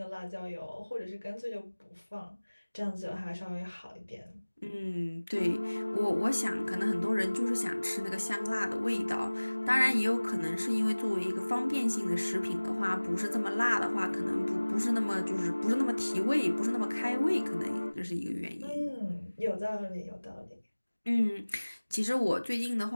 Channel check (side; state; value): both; inverted; correlation -1.00